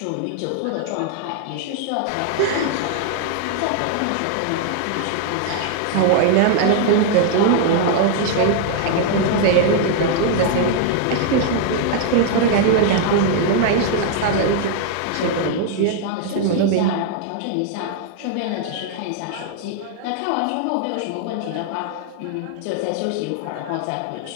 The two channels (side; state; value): both; different; correlation 0.00